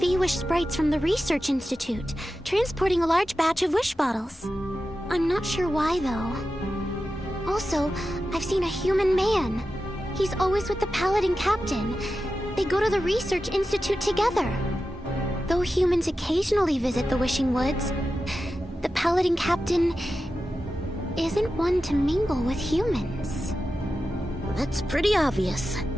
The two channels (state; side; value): normal; both; correlation 0.92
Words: sprites from the Research Institute transporting a large batch of wish bottles. I'm not sure why, though. Also, I've seen a human man. He's always with the Paladin Captain. They go to the Research Institute together. Though humans occasionally visit the Wishing Woods, the Paladin Captain isn't one to mingle with humans. That's pretty obvious.